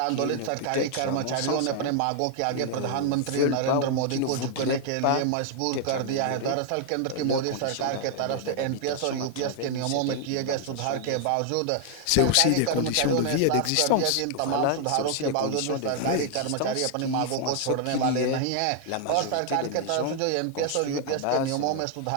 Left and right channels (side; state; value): both; different; correlation 0.00